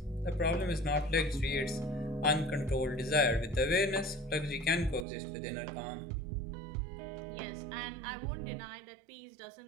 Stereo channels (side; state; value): left; drops out; at 5.1 s